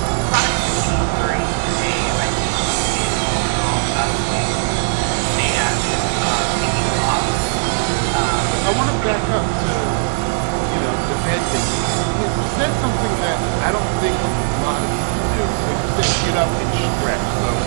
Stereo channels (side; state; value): left; silent; digital silence